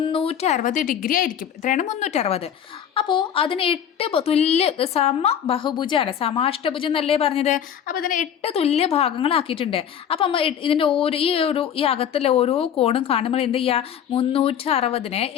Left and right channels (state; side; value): quieter; right; 9.0 dB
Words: ഡിഗ്രി ആയിരിക്കും. എത്രയാണ്? 360. അപ്പോൾ അതിന് 8 തുല്യ ബഹുഭുജമാണ്, സമാഷ്ടഭുജം എന്നല്ലേ പറഞ്ഞത്. അപ്പോൾ ഇതിന് 8 തുല്യ ഭാഗങ്ങളാക്കിയിട്ടുണ്ട്. അപ്പം നമ്മൾ ഇതിൻ്റെ ഈ അകത്തുള്ള ഓരോ കോണും കാണുമ്പോൾ എന്ത് ചെയ്യുക? 360നെ